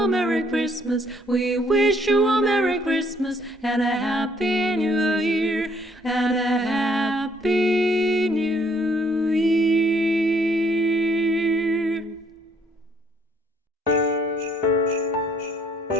Merry Christmas. We wish you a Merry Christmas and a Happy New Year. And a Happy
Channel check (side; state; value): both; normal; correlation 0.65